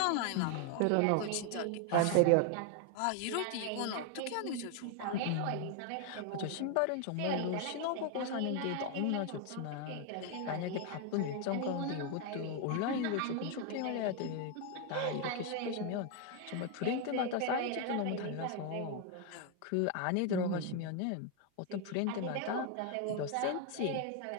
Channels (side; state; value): both; different; correlation 0.01